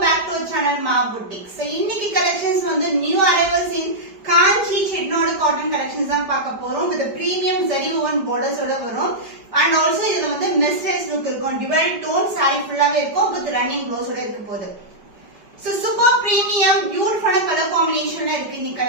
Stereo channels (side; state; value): left; late; 5.1 ms